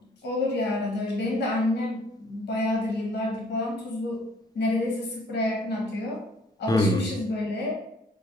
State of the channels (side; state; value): both; normal; correlation 0.59